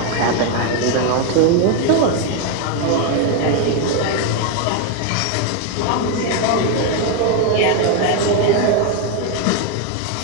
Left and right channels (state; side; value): different; both; correlation 0.01